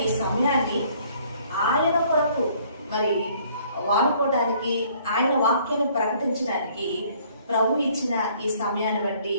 ఈ సమయాన్ని ఆయన కొరకు మరి వాడుకోవడానికి, ఆయన వాక్యాన్ని ప్రకటించడానికి ప్రభు ఇచ్చిన ఈ సమయాన్ని బట్టి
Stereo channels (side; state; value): both; inverted; correlation -0.60